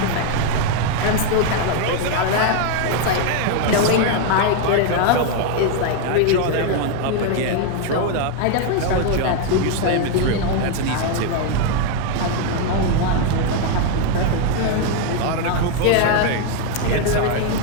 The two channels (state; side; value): different; both; correlation 0.01